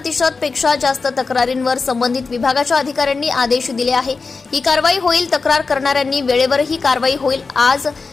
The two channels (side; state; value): right; quieter; 4.4 dB